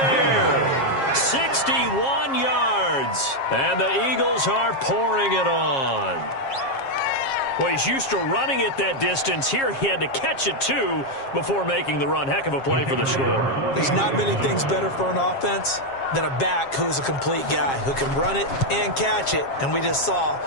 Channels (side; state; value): right; late; 7.4 ms